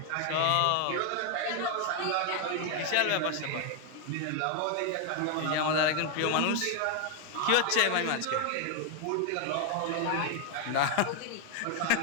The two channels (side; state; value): both; different; correlation 0.01